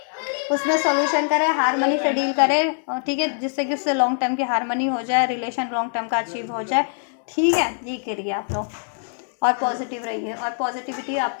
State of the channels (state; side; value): silent; right; digital silence